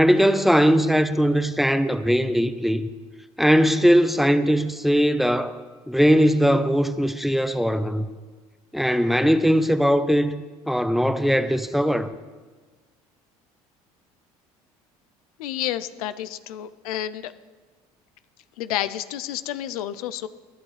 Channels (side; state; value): both; normal; correlation 0.93